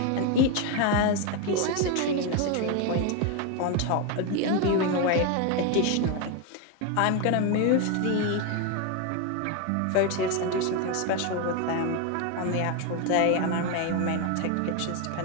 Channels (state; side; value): different; both; correlation 0.02